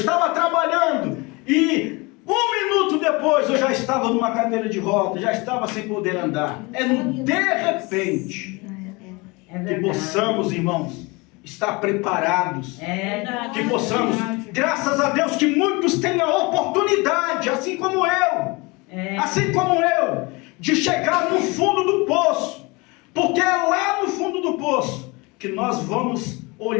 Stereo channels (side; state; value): right; quieter; 26.0 dB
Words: trabalhando e 1 minuto depois eu já estava numa cadeira de roda, já estava sem poder andar. É no de repente que possamos, irmãos, estar preparados. Que possamos, graças a Deus, que muitos tenham a oportunidade, assim como eu, de chegar no fundo do poço. Porque é lá no fundo do poço que nós vamos